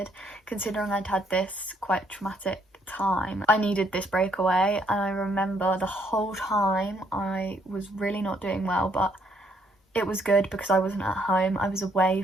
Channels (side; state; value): both; normal; correlation 0.69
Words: considering I'd had this quite traumatic time. I needed this breakaway, and I remember the whole time I was really not doing well, but it was good because I wasn't at home. I was away